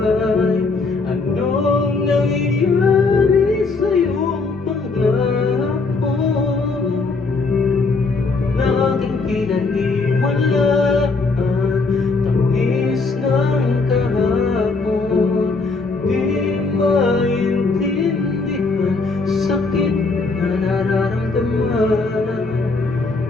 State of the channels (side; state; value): right; quieter; 3.9 dB